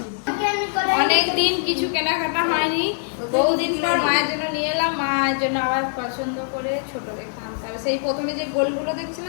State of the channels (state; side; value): silent; right; digital silence